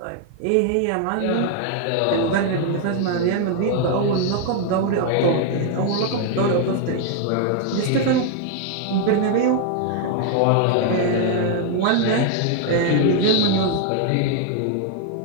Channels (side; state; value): both; different; correlation 0.00